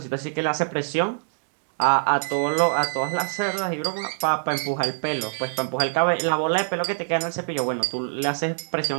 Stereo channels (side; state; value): left; silent; digital silence